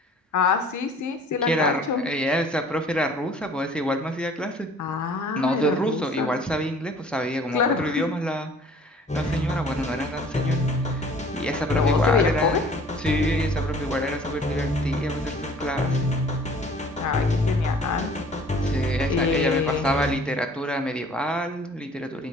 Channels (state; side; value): normal; both; correlation 0.52